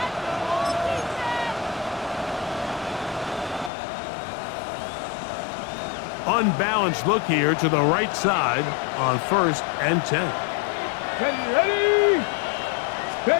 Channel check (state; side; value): drops out; right; at 3.7 s